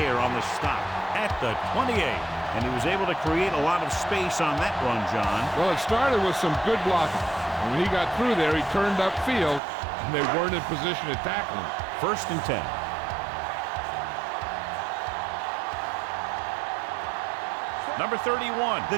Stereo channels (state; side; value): drops out; left; at 9.6 s